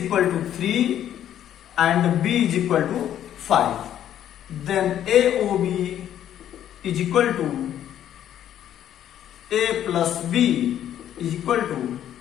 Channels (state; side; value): quieter; right; 10.8 dB